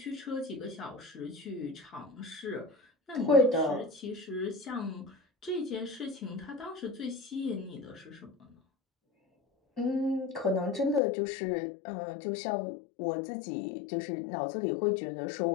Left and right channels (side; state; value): right; drops out; at 11.0 s